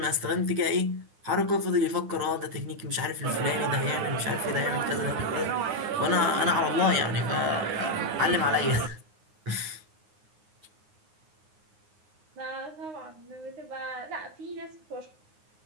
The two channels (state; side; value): late; left; 9.5 ms